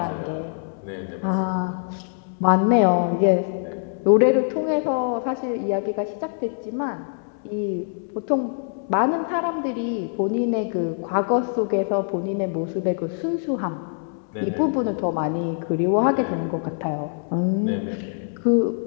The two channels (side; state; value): right; silent; digital silence